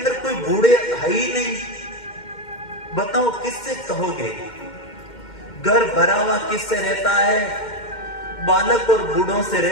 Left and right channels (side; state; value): right; late; 2.1 ms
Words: कोई बूढ़े है ही नहीं, बताओ किससे कहोगे? घर भरा हुआ किससे रहता है? बालक और बूढ़ों से